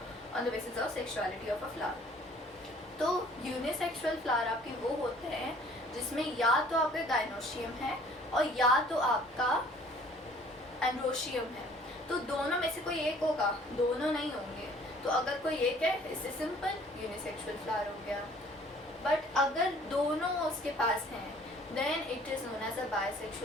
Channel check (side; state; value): both; normal; correlation 0.55